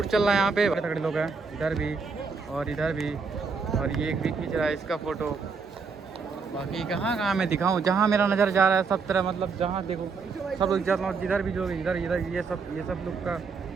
चल रहा है यहाँ पे, बड़े तगड़े लोग हैं, इधर भी और इधर भी। और ये एक भी खींच रहा है इसका फ़ोटो। बाकी कहाँ मैं दिखाऊँ, जहाँ मेरा नज़र जा रहा है सब तरह, मतलब जहाँ देखो सब लोग जिधर भी, जो इधर ये सब लोग का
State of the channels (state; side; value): quieter; left; 5.0 dB